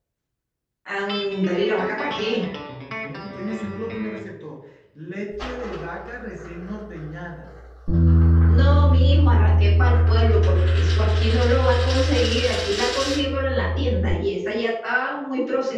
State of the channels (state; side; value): identical; both; correlation 1.00